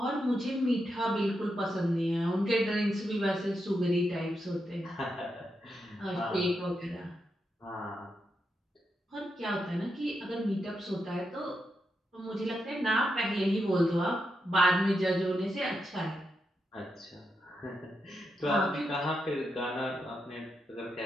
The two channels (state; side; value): normal; both; correlation 0.84